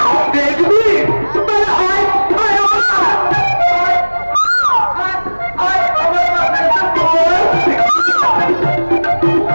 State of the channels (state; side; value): inverted; both; correlation -1.00